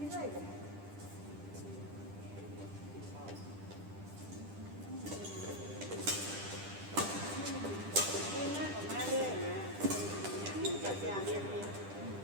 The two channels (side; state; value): left; late; 10 ms